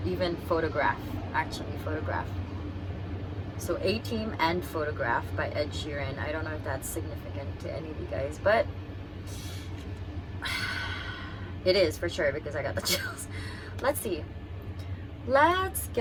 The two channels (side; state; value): both; identical; correlation 1.00